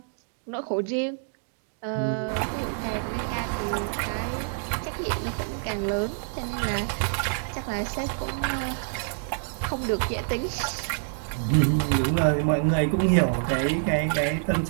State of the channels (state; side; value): silent; left; digital silence